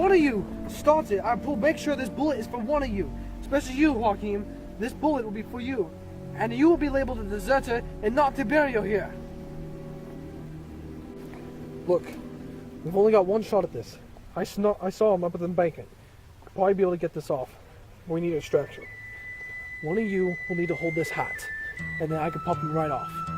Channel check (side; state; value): both; identical; correlation 1.00